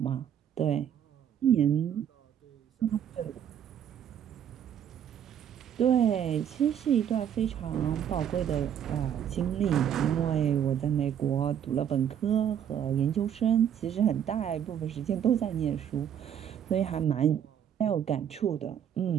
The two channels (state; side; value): quieter; left; 9.3 dB